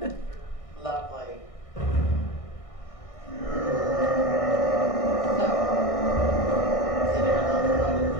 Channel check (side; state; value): right; late; 1.6 ms